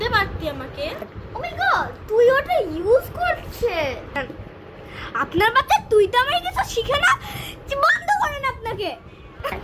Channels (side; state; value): both; identical; correlation 1.00